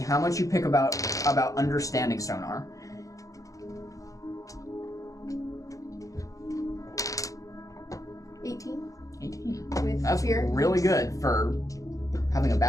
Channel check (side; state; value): right; late; 0.16 ms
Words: much you pick about understanding sonar. 18. 18. With That's fear. really good for having a